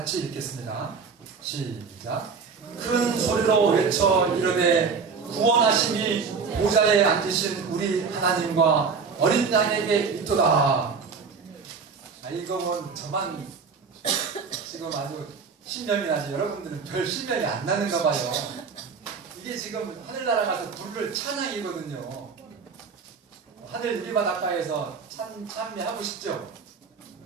읽겠습니다. 시작. 큰 소리로 외쳐 이르되 구원하심이 보좌에 앉으신 우리 하나님과 어린 양에게 있도다. 이거는 저만 지금 아주 신명이 나지 여러분들은 별 신명이 안 나는가 봐요. 이게 지금 하늘나라 가서 부를 찬양이거든요. 하늘 유리바닷가에서 찬미하고 싶죠?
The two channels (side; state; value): left; quieter; 5.4 dB